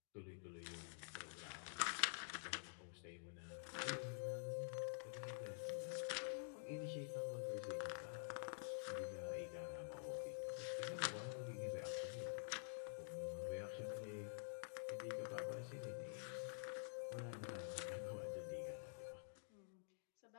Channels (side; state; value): right; silent; digital silence